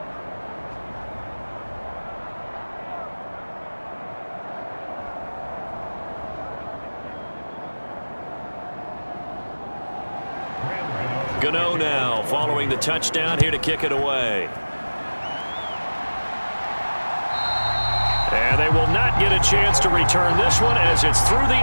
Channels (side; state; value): both; inverted; correlation -1.00